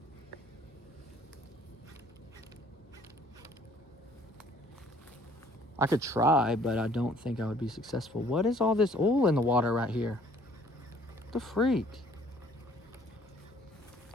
I could try, but I don't think I would be successful. What is all this oil in the water right here? What the freak?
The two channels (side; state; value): both; normal; correlation 0.58